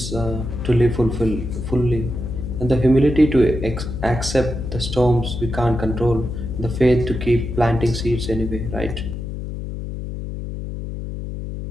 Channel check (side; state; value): left; noise; hum, 7 dB below the sound